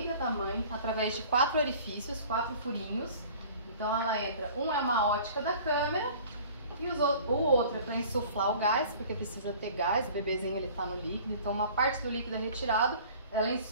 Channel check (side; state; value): both; inverted; correlation -0.47